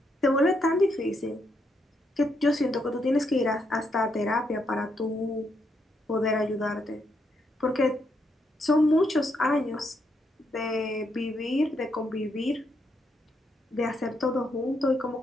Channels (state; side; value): normal; both; correlation 0.78